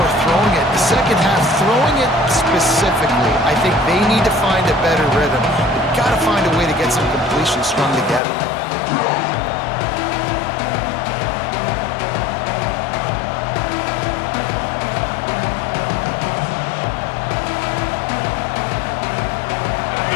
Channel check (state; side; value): drops out; right; at 8.2 s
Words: throwing it. The second half, throwing it specifically, I think they need to find a better rhythm. They've got to find a way to get some completions strung together.